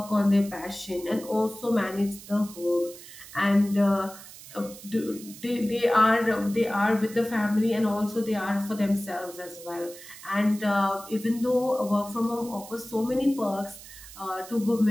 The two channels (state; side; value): noise; right; hiss, 16 dB below the sound